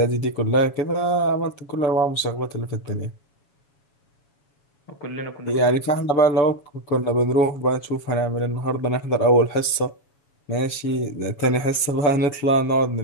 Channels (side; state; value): right; late; 7.1 ms